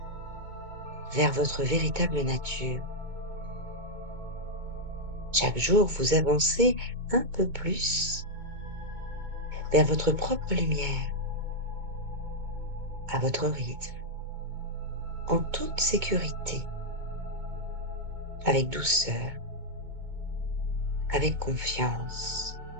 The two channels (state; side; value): late; left; 2.2 ms